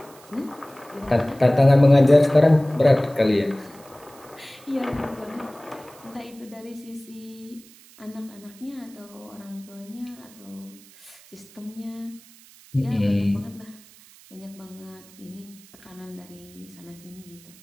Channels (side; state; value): right; noise; hiss, 24 dB below the sound